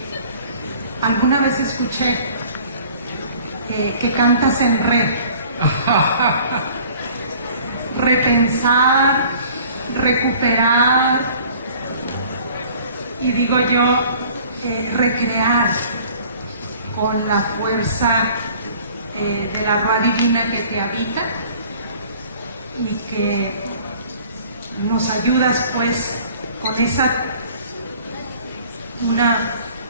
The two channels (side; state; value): both; inverted; correlation -0.51